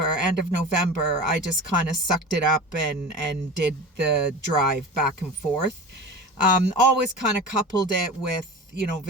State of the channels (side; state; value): both; normal; correlation 0.33